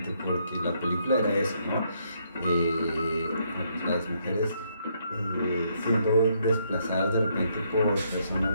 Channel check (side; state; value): both; inverted; correlation -0.73